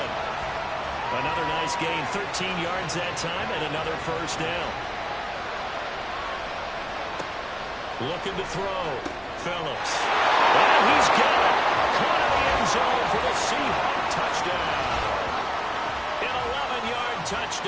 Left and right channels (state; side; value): identical; both; correlation 1.00